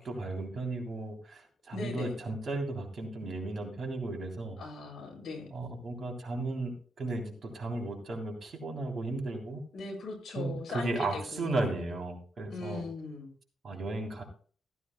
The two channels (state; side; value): normal; both; correlation 0.79